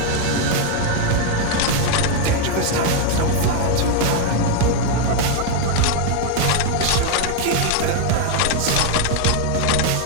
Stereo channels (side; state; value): both; different; correlation 0.01